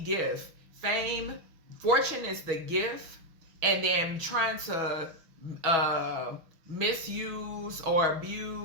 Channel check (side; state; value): left; late; 6.2 ms